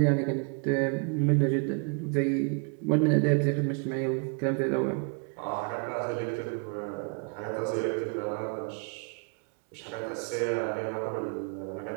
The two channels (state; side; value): quieter; left; 36.3 dB